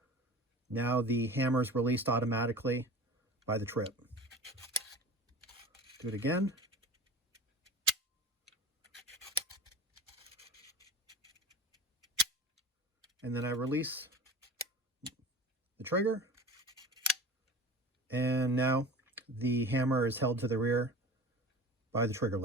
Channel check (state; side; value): normal; both; correlation 0.36